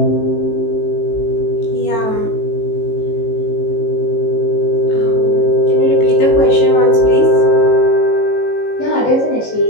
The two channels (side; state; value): right; late; 18 ms